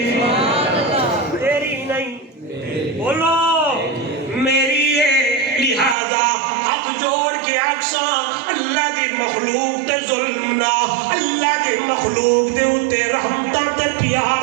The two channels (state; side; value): drops out; left; at 6.0 s